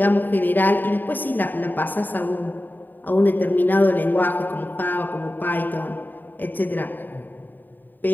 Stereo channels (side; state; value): right; late; 0.090 ms